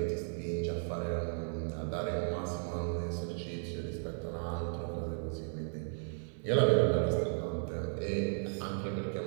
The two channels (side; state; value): left; silent; 54 dB below the other